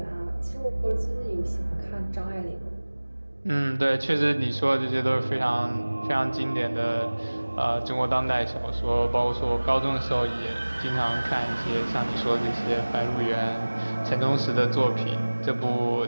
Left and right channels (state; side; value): inverted; both; correlation -1.00